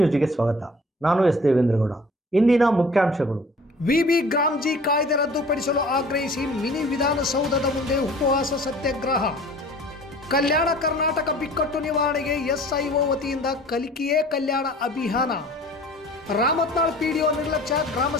ಸ್ವಾಗತ. ನಾನು ಎಸ್ ದೇವೇಂದ್ರಗೌಡ. ಇಂದಿನ ಮುಖ್ಯಾಂಶಗಳು. ವಿಬಿ ಗ್ರಾಮ್ಜಿ ಕಾಯ್ದೆ ರದ್ದುಪಡಿಸಲು ಆಗ್ರಹಿಸಿ ಮಿನಿ ವಿಧಾನಸೌಧದ ಮುಂದೆ ಉಪವಾಸ ಸತ್ಯಾಗ್ರಹ. ಕಲ್ಯಾಣ ಕರ್ನಾಟಕ ಬಿಕ್ಕಟ್ಟು ನಿವಾರಣೆಗೆ ಎಸ್ಐಒ ವತಿಯಿಂದ ಕಲಿಕೆಯೇ ಕಲ್ಯಾಣ ಅಭಿಯಾನ. ರಾಮತ್ನಾಳ್ ಪಿಡಿಒ ನಿರ್ಲಕ್ಷ್ಯ,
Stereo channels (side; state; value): both; normal; correlation 0.48